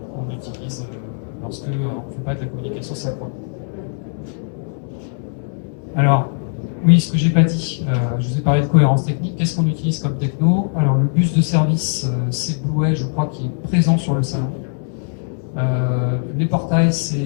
qu'on utilise lorsque on ne fait pas de la communication synchrone. Alors, oui, ce que j'ai pas dit, je vous ai parlé de cohérence technique. Qu'est-ce qu'on utilise comme techno? Alors le bus de service, c'est Blueway, je crois, qui est présent sur le salon. Les portails,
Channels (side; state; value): right; silent; digital silence